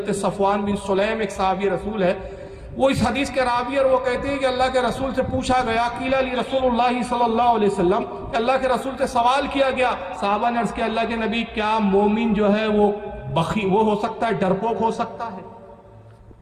صفوان بن سلیم ایک صحابی رسول ہے، وہ اس حدیث کے راوی، اور وہ کہتے ہیں کہ اللہ کے رسول سے پوچھا گیا، قیل لی رسول اللہ صلی اللہ علیہ وسلم، کہ اللہ کے رسول سے سوال کیا گیا، صحابہ نے عرض کیا اللہ کے نبی کیا مومن جو ہے وہ وہ ہو سکتا ہے، ڈرپوک ہو سکتا ہے؟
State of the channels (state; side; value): identical; both; correlation 1.00